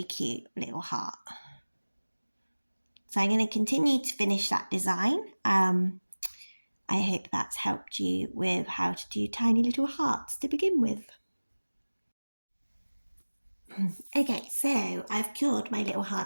cute little heart. So I'm going to continue to finish that design. I hope that's helped you with how to do tiny little hearts to begin with. Okay, so I've cured my little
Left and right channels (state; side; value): inverted; both; correlation -1.00